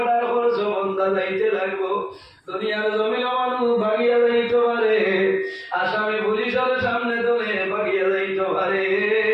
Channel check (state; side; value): identical; both; correlation 1.00